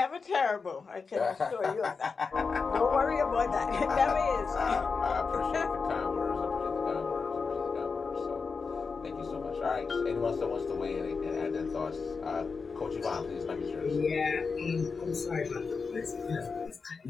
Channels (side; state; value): right; quieter; 4.9 dB